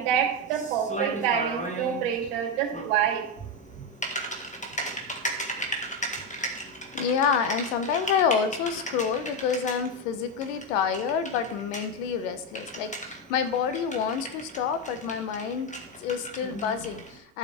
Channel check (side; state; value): both; normal; correlation 0.09